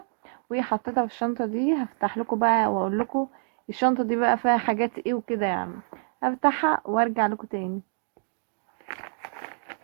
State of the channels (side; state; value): left; silent; digital silence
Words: وحطيتها في الشنطة دي. هفتح لكم بقى واقول لكم الشنطة دي بقى فيها حاجات ايه وكده يعني. هفتحها وارجع لكم تاني.